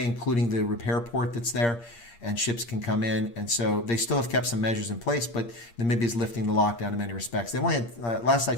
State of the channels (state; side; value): late; right; 8.6 ms